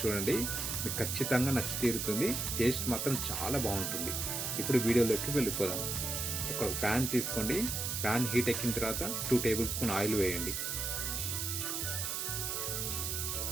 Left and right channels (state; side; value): noise; right; hiss, 2 dB below the sound